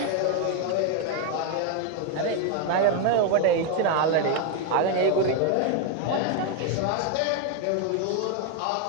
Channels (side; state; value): both; different; correlation 0.01